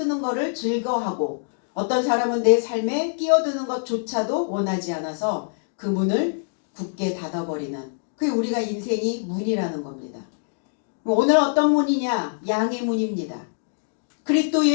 것을 즐거워하고 어떤 사람은 내 삶에 끼어드는 것조차도 원하지 않아서 그 문을 굳게 닫아버리는, 그게 우리가 인생이 문이라는 겁니다. 오늘 어떤 문이냐? 양의 문입니다. 그리스도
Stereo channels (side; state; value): right; silent; digital silence